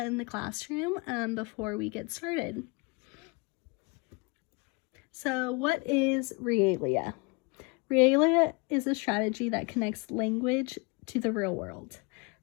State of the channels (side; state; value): right; quieter; 30.1 dB